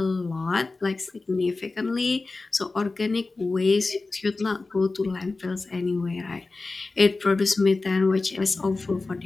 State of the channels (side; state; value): right; quieter; 3.6 dB